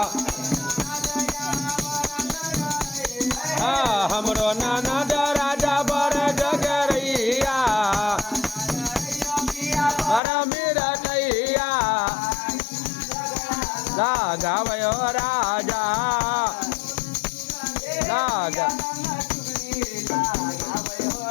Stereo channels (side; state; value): right; drops out; at 10.2 s